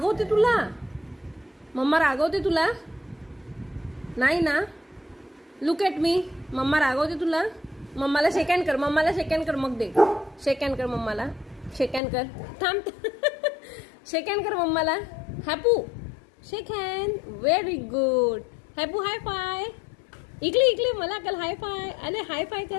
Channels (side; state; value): right; drops out; at 12.0 s